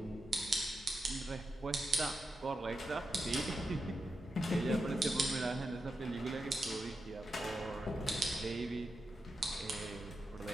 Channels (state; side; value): normal; both; correlation 0.88